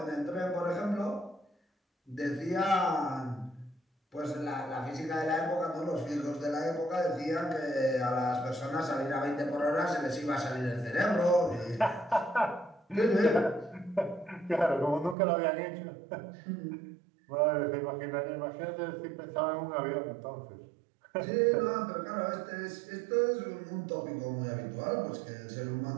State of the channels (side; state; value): left; drops out; at 15.2 s